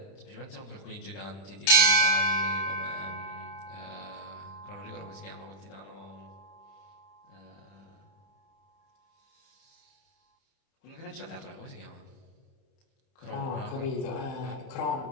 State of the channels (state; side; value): late; right; 30 ms